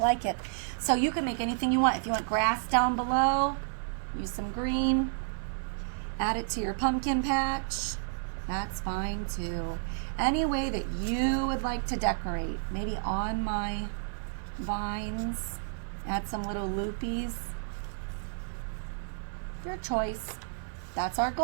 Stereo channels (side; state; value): left; silent; 57 dB below the other